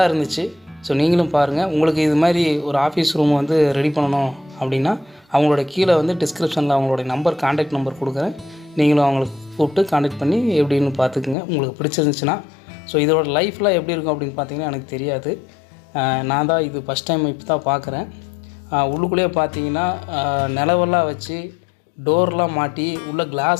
இருந்துச்சு. ஸோ நீங்களும் பாருங்கள். உங்களுக்கு இது மாதிரி ஒரு ஆஃபீஸ் ரூம் வந்து ரெடி பண்ணணும் அப்படின்னா அவங்களோட கீழே வந்து டிஸ்கிரிப்ஷனில் அவங்களோட கான்டாக்ட் நம்பர் கொடுக்குறேன். நீங்களும் அவங்களுக்கு கூப்பிட்டு கான்டாக்ட் பண்ணி எப்படின்னு பார்த்துக்குங்க. உங்களுக்கு பிடிச்சிருந்துச்சுன்னா. ஸோ இதோட லைஃப்லாம் எப்படி இருக்கும் அப்படின்னு பார்த்தீங்கன்னா எனக்கு தெரியாது. நான் தான் இது ஃபஸ்ட் டைம் இப்போ தான் பார்க்குறேன். உள்ளுக்குள்ளேயே பார்த்தீங்கன்னா நிலவெல்லாம் வச்சு டோர்லாம் மாட்டி உள்ள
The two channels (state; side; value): drops out; right; at 11.4 s